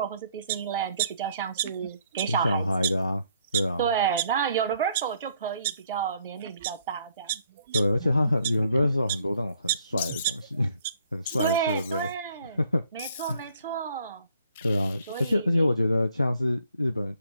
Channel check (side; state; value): both; inverted; correlation -0.66